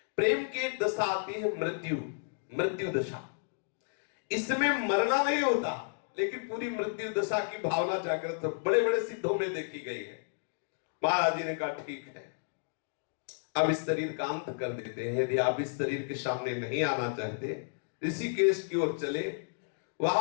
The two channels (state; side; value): silent; right; digital silence